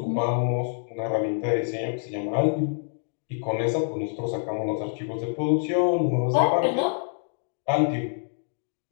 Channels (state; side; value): silent; right; digital silence